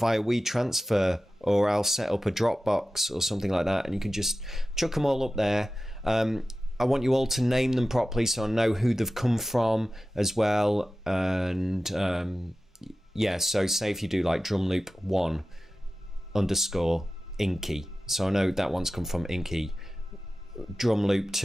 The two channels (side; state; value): both; normal; correlation 0.95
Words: WeTransfer, or I'll set up a Dropbox or something like that, and you can just chuck them all up there. I want you all to name them properly so I know who they've come from as well. And yeah, so say if you do like drum loop 1 _ Inky, so I know that one's come from Inky. Drum loop